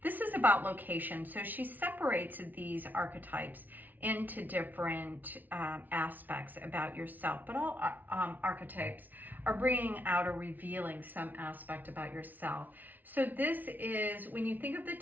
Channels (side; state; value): left; late; 0.082 ms